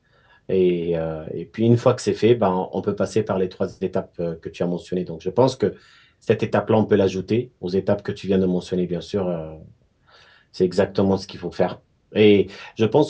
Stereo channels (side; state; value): both; identical; correlation 1.00